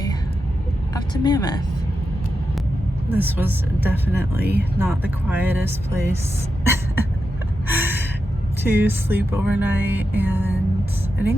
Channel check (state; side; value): normal; both; correlation 0.88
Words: up to Mammoth. This was definitely not the quietest place to sleep overnight, and I